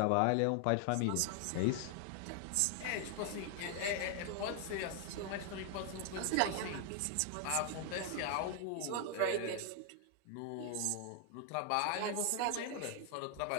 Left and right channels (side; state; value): both; different; correlation 0.00